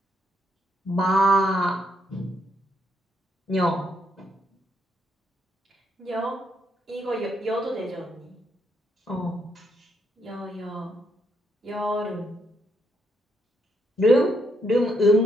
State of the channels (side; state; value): both; normal; correlation 0.76